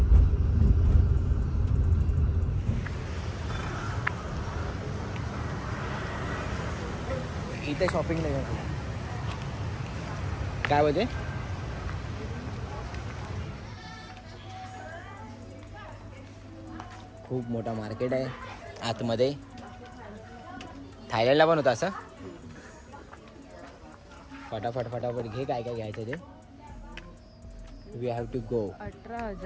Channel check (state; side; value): identical; both; correlation 1.00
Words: इथे shopping नाही काय होते. खूप मोठा market आहे आतमध्ये. थायलंडला पण होतं असं. फटाफट घे काय घ्यायचं ते. We have to go.